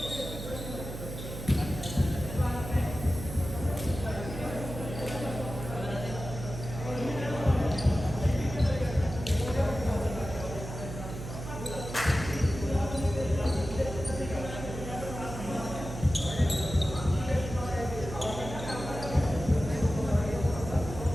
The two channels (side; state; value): right; noise; hum, 8 dB below the sound